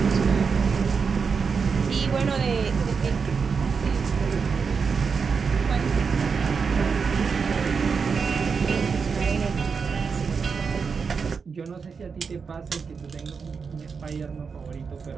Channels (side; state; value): left; quieter; 5.6 dB